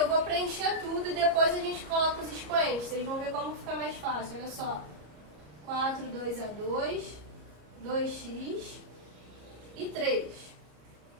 vou preencher tudo e depois a gente coloca os expoentes. Vocês vão ver como fica mais fácil, olha só. 4, 2 a 2, 2x e 3.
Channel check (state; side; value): late; left; 34 ms